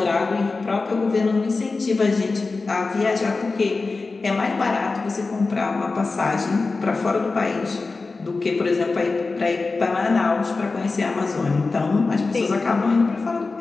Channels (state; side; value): quieter; right; 3.9 dB